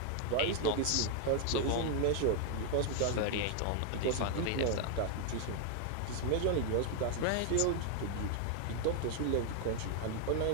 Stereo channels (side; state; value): both; different; correlation 0.00